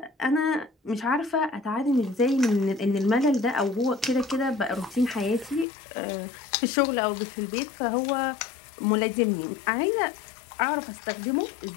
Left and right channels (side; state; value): right; drops out; at 5.7 s